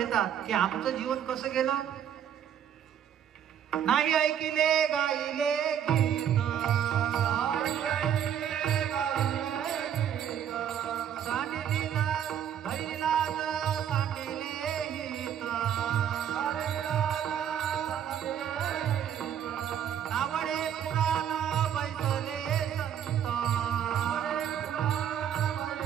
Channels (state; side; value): quieter; left; 9.4 dB